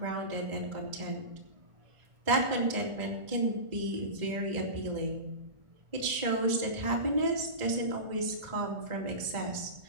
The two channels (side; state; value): left; late; 1.4 ms